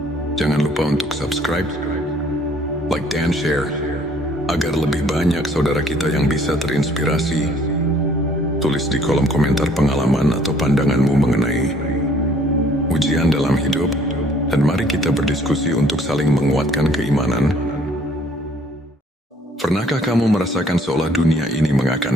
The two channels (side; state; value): both; normal; correlation 0.60